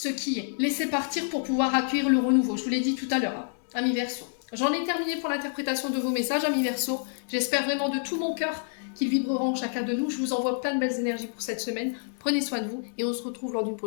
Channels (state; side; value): silent; right; digital silence